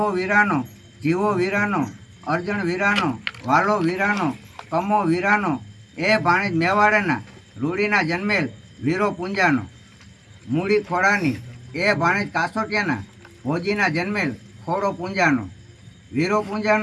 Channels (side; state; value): both; identical; correlation 1.00